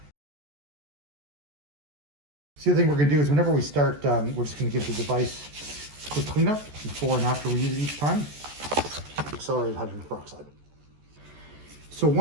So the other thing we're gonna do is whenever we start, we're just gonna give the device a quick cleanup before and after we use it each time. Accelerated hydrogen peroxide. So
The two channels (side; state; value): left; late; 14 ms